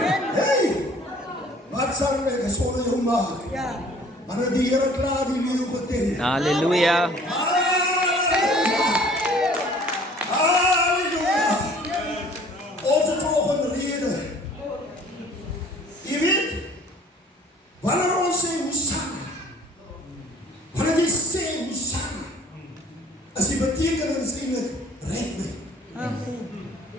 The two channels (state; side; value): normal; both; correlation 0.53